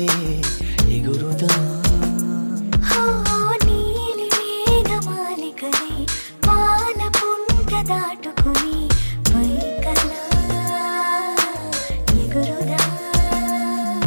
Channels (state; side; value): inverted; both; correlation -1.00